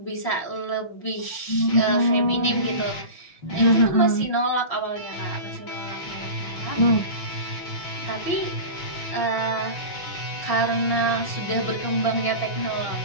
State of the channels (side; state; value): right; late; 6.1 ms